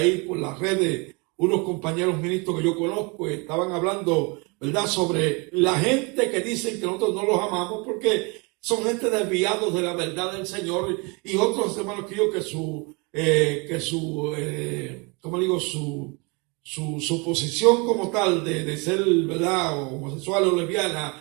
por las redes, unos compañeros ministros que yo conozco, estaban hablando, ¿verdad?, sobre la gente que dicen que nosotros no los amamos porque son gente desviados de la verdad del Señor, y otros hermanos que yo su posición como tal de ser, ¿verdad?, homosexual o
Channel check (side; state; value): left; quieter; 29.7 dB